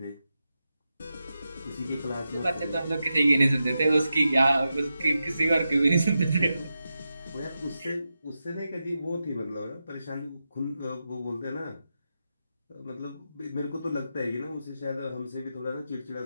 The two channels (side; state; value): both; inverted; correlation -0.89